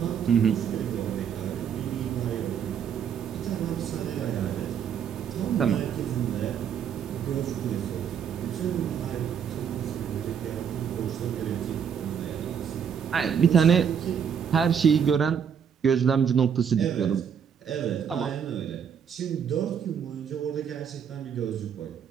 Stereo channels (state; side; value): quieter; left; 7.7 dB